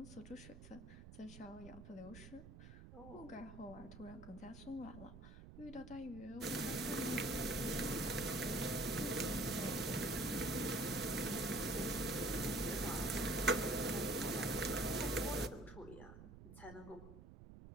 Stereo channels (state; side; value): noise; right; rumble, 15 dB below the sound